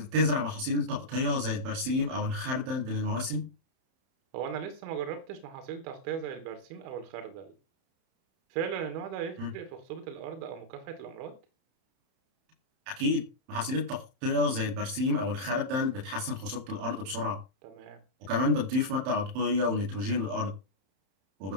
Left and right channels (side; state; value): left; late; 31 ms